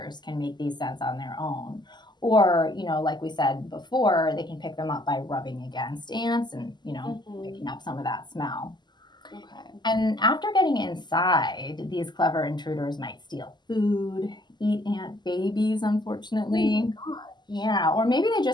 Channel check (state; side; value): late; right; 0.21 ms